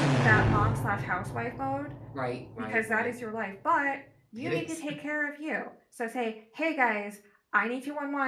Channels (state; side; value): identical; both; correlation 1.00